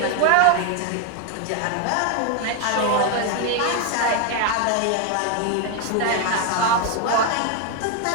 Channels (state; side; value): different; both; correlation 0.01